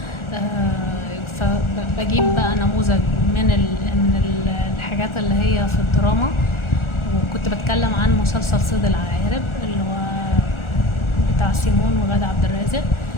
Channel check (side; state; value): right; late; 1.4 ms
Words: فبجيب بقى نموذج من الحاجات اللي هي في الدراما، وكنت بتكلم عن مسلسل صيد العقارب اللي هو بتاع سيمون وغادة عبد الرازق.